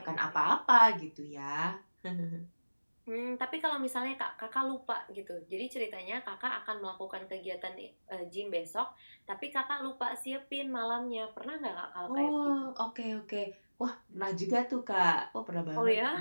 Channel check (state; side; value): inverted; both; correlation -1.00